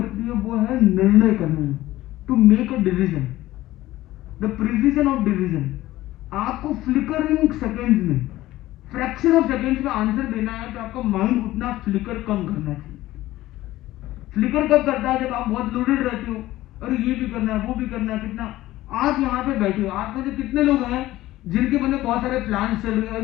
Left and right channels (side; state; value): right; quieter; 16.1 dB